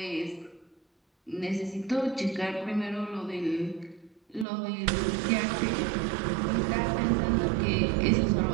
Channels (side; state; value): left; drops out; at 4.5 s